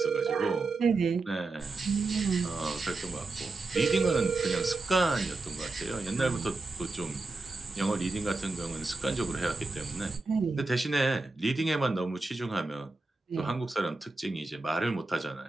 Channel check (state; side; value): quieter; left; 3.4 dB